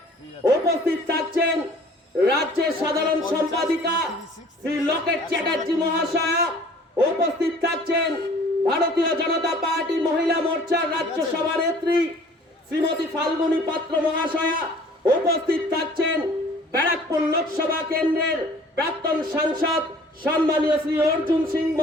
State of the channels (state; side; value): normal; both; correlation 0.52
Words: উপস্থিত থাকছেন রাজ্যের সাধারণ সম্পাদিকা শ্রী লকেট চ্যাটার্জি মহাশয়া। উপস্থিত থাকছেন ভারতীয় জনতা পার্টি মহিলা মোর্চার রাজ্য সভানেত্রী শ্রীমতী ফাল্গুনী পাত্র মহাশয়া। উপস্থিত থাকছেন ব্যারাকপুর লোকসভা কেন্দ্রের প্রাক্তন সাংসদ সম্মানীয় শ্রী অর্জুন সিং